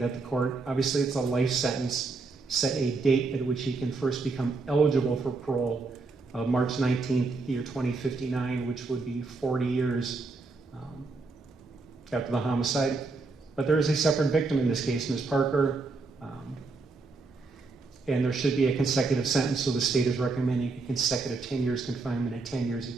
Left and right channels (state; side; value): quieter; left; 3.8 dB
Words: the court, obviously it's a life sentence, set a date at which he can first become eligible for parole. of March 19th, year 2059, which would be 40 years after the homicide. But there is a separate victim in this case, Ms. Parker, and there should be a consecutive sentence, so the state is recommending a consecutive 10 years confinement and 10